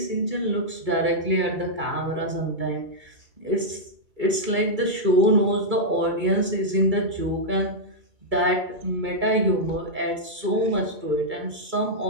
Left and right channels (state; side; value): late; left; 2.3 ms